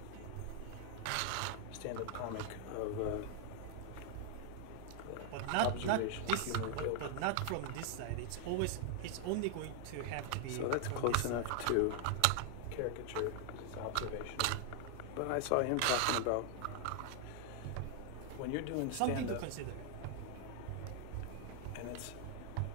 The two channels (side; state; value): both; different; correlation 0.00